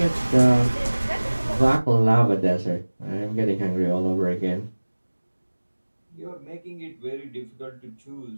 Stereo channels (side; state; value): both; inverted; correlation -1.00